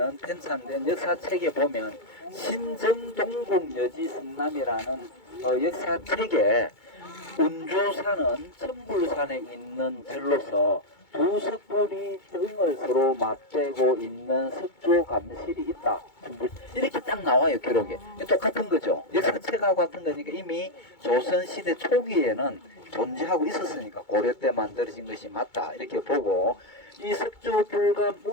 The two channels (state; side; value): late; right; 2.2 ms